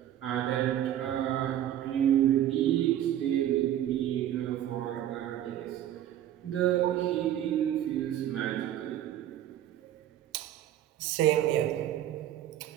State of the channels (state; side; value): quieter; left; 11.7 dB